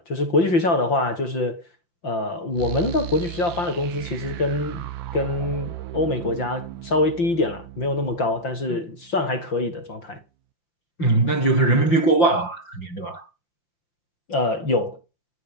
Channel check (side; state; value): right; late; 5.8 ms